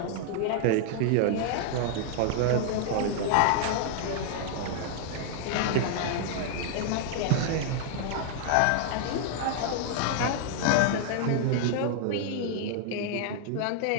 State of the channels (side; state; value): both; different; correlation 0.00